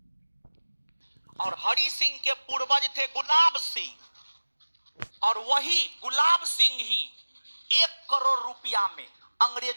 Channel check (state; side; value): inverted; both; correlation -1.00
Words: और हरि सिंह के पूर्वज थे गुलाब सिंह, और वही गुलाब सिंह ही 1 करोड़ रुपया में